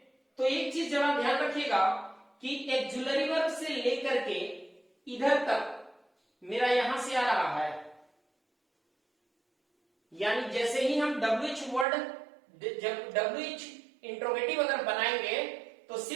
तो एक चीज जरा ध्यान रखिएगा कि एक्जुलरी वर्ब से लेकर के इधर तक मेरा यहां से आ रहा है, यानी जैसे ही हम WH वर्ड, जब WH इंट्रोगेटिव अगर बनाएंगे, तो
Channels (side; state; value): left; drops out; at 11.9 s